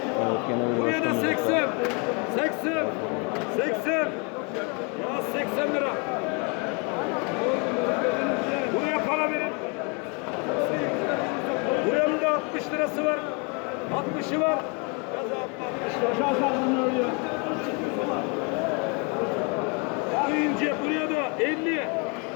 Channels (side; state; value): right; quieter; 33.3 dB